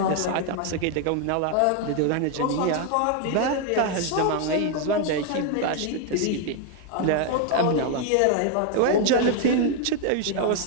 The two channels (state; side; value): different; both; correlation 0.01